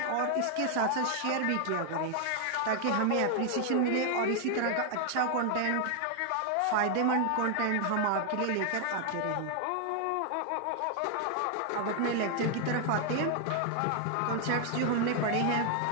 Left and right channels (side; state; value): both; different; correlation 0.00